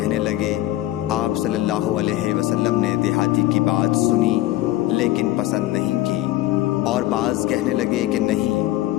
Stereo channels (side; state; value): right; quieter; 15.5 dB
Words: لگے، آپ صلی اللہ علیہ وسلم نے دیہاتی کی بات سنی لیکن پسند نہیں کی، اور بعض کہنے لگے کہ نہیں